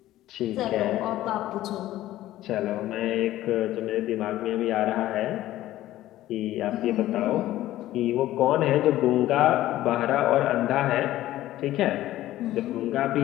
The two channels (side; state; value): right; quieter; 14.7 dB